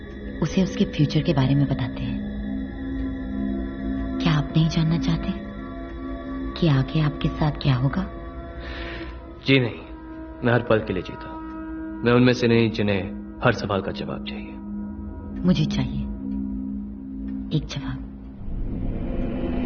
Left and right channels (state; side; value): identical; both; correlation 1.00